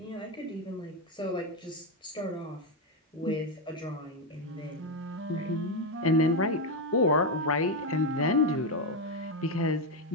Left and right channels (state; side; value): normal; both; correlation 0.07